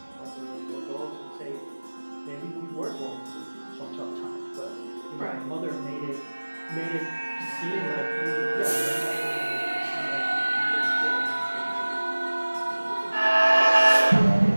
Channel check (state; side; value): inverted; both; correlation -1.00